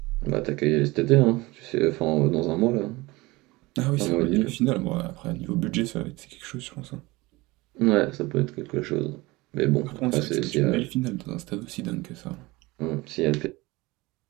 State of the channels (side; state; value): left; quieter; 21.8 dB